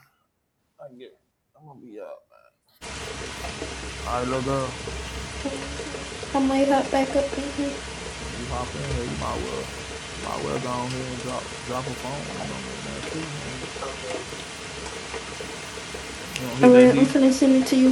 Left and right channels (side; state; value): both; identical; correlation 1.00